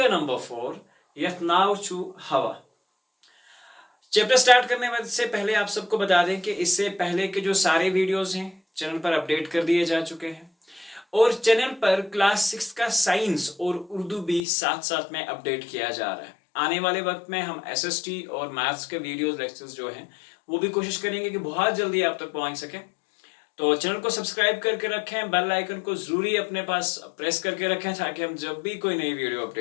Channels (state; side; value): drops out; right; at 14.4 s